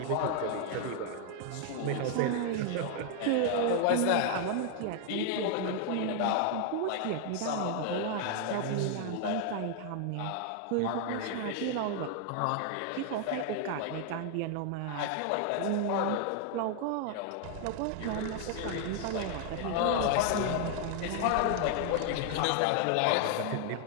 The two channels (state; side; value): different; both; correlation 0.00